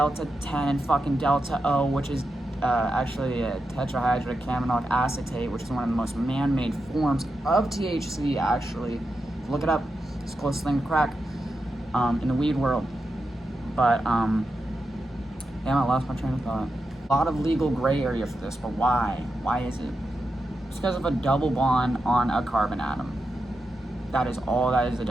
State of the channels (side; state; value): both; normal; correlation 0.88